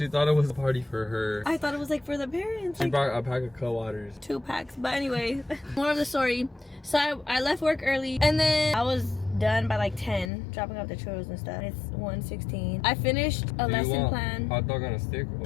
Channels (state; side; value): drops out; right; at 10.3 s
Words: thought it was a party for her. I thought it was like for the parents. She Like, brought a pack of co-waters. 2 packs. But anyway, more of the story. So I left work early and then I was done by like 10, dropping off the churros and stuff. It's 1:16. I finished a lesson plan. Hot dog on a stick